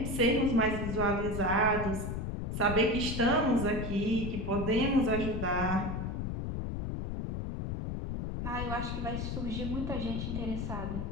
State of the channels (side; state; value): left; noise; rumble, 3 dB below the sound